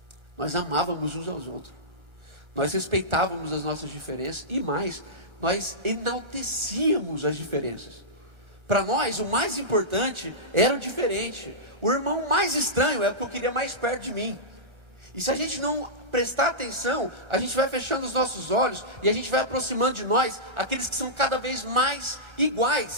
Nós amávamos uns aos outros. Nós respeitávamos as nossas diferenças. E mais, nós enaltecíamos as diferenças. Para nós, o mais importante era o diferente. O irmão mais estranho é o que eu queria mais perto de mim. E se a gente não prestar atenção, a gente vai fechando os nossos olhos e a gente vai aproximando de nós aqueles que são cada vez mais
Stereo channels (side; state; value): left; late; 1.3 ms